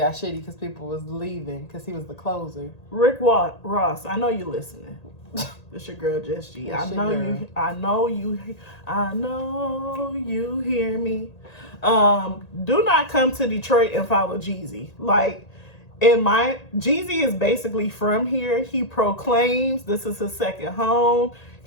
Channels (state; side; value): late; right; 1.8 ms